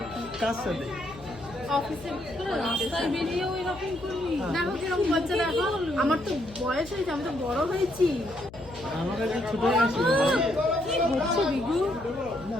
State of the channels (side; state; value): left; noise; hum, 18 dB below the sound